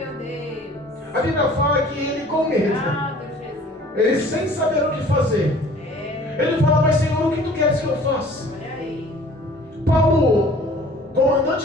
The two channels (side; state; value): both; normal; correlation 0.50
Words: Deus. A Bíblia fala que ele, com medo, ele sem saber o que fazer, ele fala: mas Senhor, o que tu queres que eu faça? Paulo,